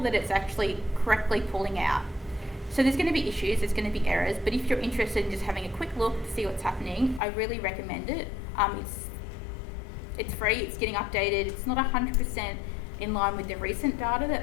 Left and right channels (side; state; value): right; drops out; at 7.2 s